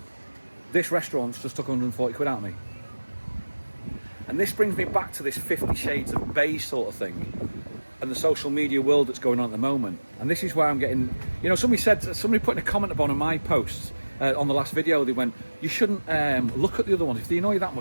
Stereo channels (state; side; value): inverted; both; correlation -1.00